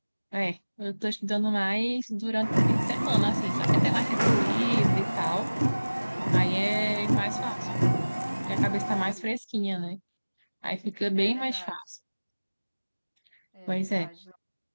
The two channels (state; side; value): inverted; both; correlation -1.00